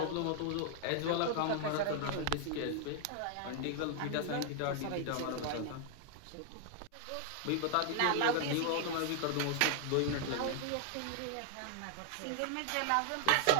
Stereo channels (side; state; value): both; different; correlation 0.00